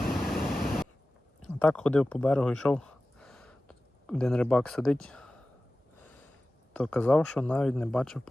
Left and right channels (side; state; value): both; normal; correlation 0.96